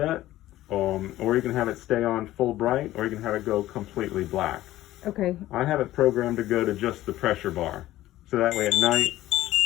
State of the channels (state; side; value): quieter; right; 15.1 dB